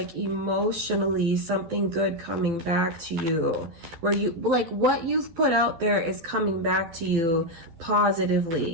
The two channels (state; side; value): late; left; 12 ms